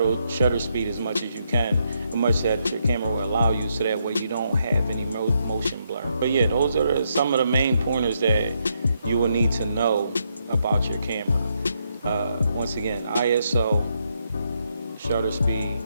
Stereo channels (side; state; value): both; inverted; correlation -0.78